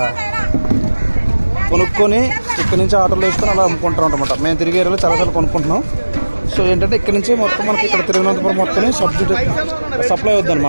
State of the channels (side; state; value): both; inverted; correlation -1.00